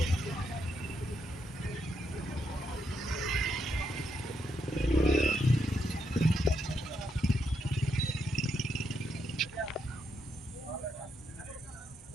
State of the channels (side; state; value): both; normal; correlation 0.80